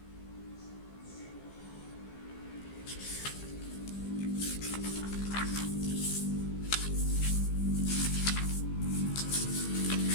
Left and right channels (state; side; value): late; right; 15 ms